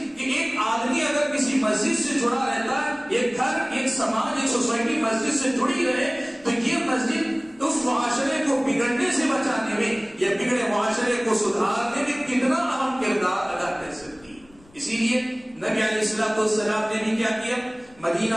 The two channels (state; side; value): noise; left; rumble, 28 dB below the sound